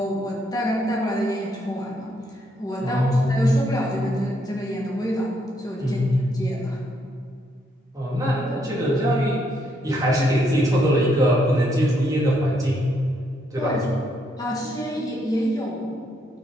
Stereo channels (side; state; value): both; normal; correlation 0.74